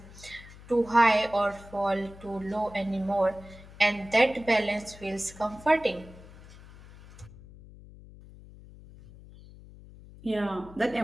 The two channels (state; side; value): noise; left; hum, 19 dB below the sound